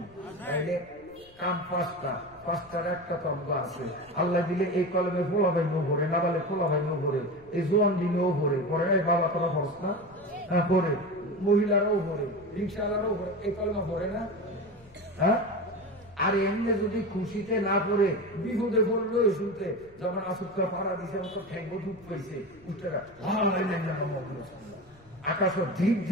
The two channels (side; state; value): left; noise; rumble, 27 dB below the sound